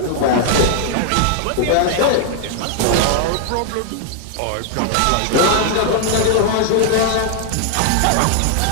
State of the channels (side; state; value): both; different; correlation 0.00